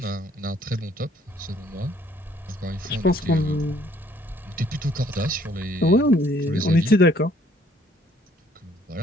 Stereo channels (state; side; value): normal; both; correlation 0.63